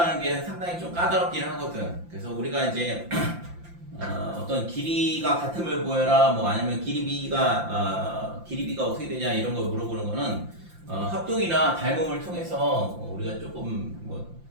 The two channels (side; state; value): left; late; 5.8 ms